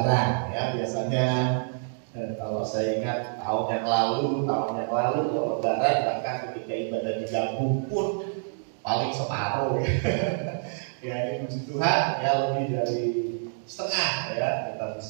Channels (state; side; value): silent; left; digital silence